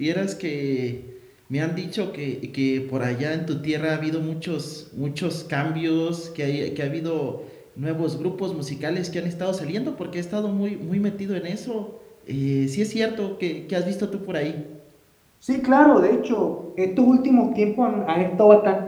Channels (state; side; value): identical; both; correlation 1.00